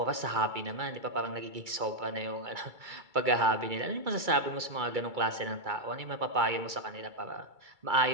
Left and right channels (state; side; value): late; left; 2.3 ms